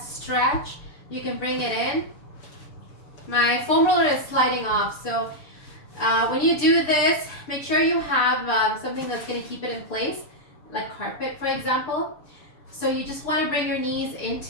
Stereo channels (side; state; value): right; late; 6.9 ms